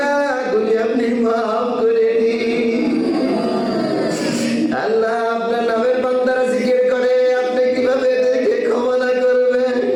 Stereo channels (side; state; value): both; identical; correlation 1.00